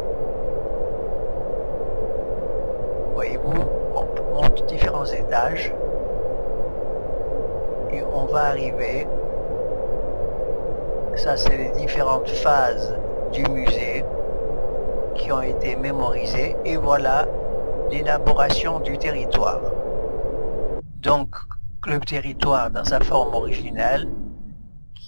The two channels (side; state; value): both; inverted; correlation -1.00